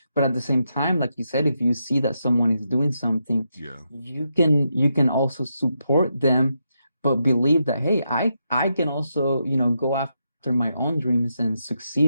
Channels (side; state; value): both; inverted; correlation -0.83